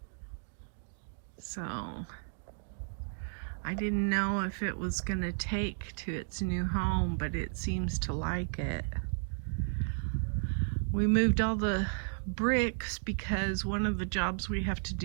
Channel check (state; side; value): silent; left; digital silence